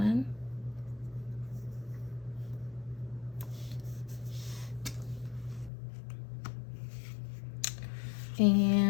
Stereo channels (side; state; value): right; drops out; at 5.7 s